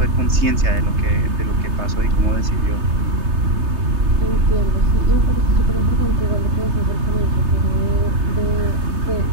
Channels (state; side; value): late; left; 3.3 ms